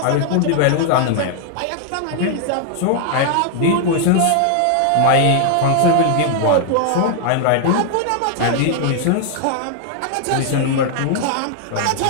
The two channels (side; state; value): both; different; correlation 0.00